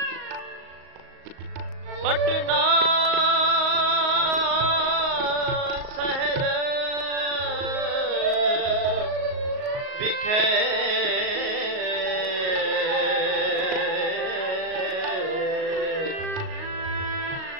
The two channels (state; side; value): late; left; 36 ms